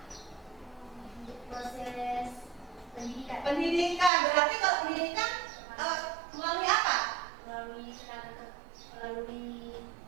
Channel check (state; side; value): drops out; left; at 4.1 s